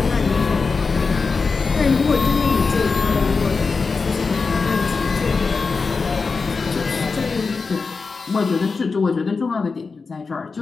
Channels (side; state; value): right; quieter; 4.5 dB